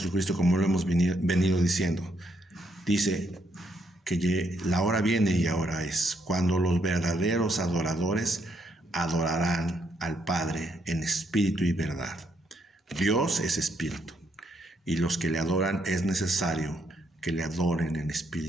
como lo hemos venido diciendo, dice que la hora viene y ahora es, cuando los verdaderos adoradores adorarán al Padre en espíritu y verdad. Dios es espíritu, y los que le adoran es necesario que le adoren en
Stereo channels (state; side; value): normal; both; correlation 0.75